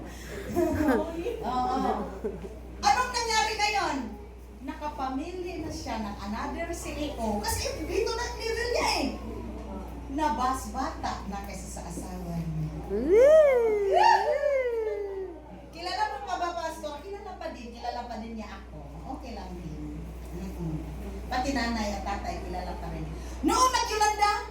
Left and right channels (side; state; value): both; identical; correlation 1.00